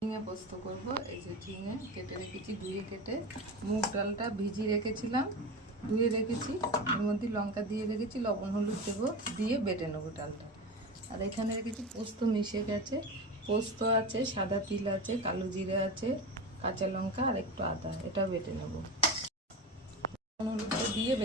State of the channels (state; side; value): normal; both; correlation 0.25